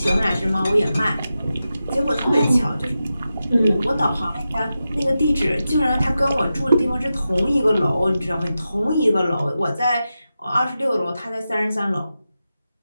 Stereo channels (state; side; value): inverted; both; correlation -0.91